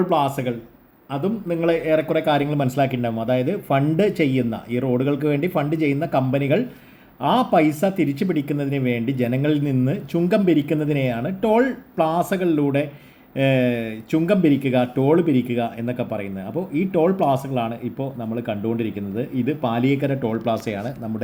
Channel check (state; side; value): identical; both; correlation 1.00